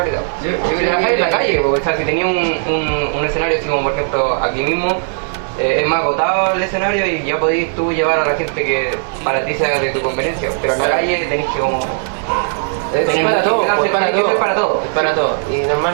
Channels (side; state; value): left; silent; 66 dB below the other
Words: Trabajar en la calle, porque, o sea, si tenía un escenario así como por ejemplo aquí mismo, es más agotado el escenario y ya podís tú llevar a la gente que para ti sea de tu conveniencia, pero en la calle tenés que como... Es para todo, para todo. Y